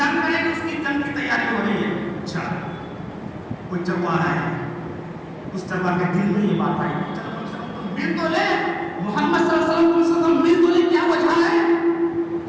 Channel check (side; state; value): both; identical; correlation 1.00